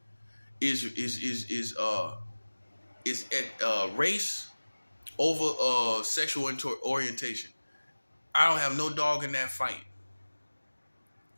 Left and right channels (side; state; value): both; inverted; correlation -1.00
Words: is race over sexual orientation. I don't have no dog in that fight.